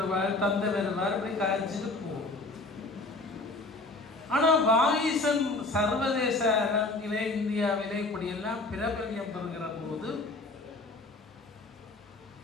தந்தை வருவார், இப்படி காய்ச்சிட்டு போகும். ஆனால் வாகீசன் சர்வதேச அரங்கிலே இந்தியாவிலே இப்படியெல்லாம் பிரபல்யம் பெறுகிற போது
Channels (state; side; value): quieter; right; 3.3 dB